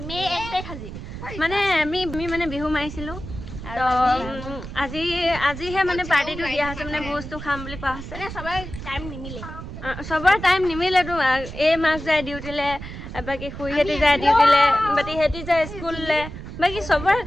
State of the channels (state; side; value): noise; right; rumble, 10 dB below the sound